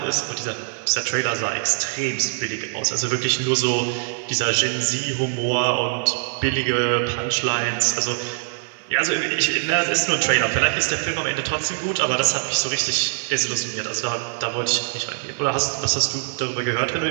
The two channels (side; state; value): left; silent; 58 dB below the other